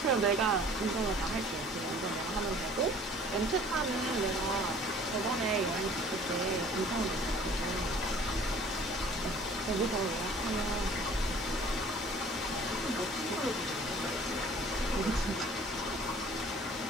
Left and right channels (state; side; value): normal; both; correlation 0.51